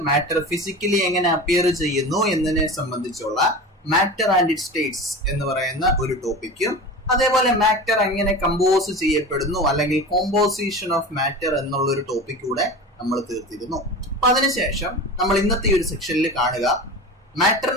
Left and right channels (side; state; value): both; normal; correlation 0.31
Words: മാറ്റർ ഫിസിക്കലി എങ്ങനെ അപ്പിയർ ചെയ്യുന്നു എന്നതിനെ സംബന്ധിച്ചുള്ള മാറ്റർ ആൻഡ് ഇറ്റ് സ്റ്റേറ്റ്സ് എന്ന് പറയുന്ന ഒരു ടോപ്പിക്കും, അതേപോലെ മാറ്റർ എങ്ങനെ കമ്പോസ് ചെയ്യപ്പെടുന്നു അല്ലെങ്കിൽ കോമ്പോസിഷൻ ഓഫ് മാറ്റർ എന്നുള്ള ഒരു ടോപ്പിക് കൂടെ നമ്മൾ തീർത്തിരുന്നു. അപ്പൊ അതിനുശേഷം നമ്മൾ ഇന്നത്തെ ഈ ഒരു സെക്ഷനിൽ കാണുക